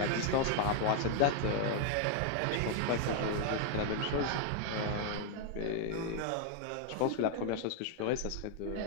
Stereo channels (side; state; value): both; different; correlation 0.00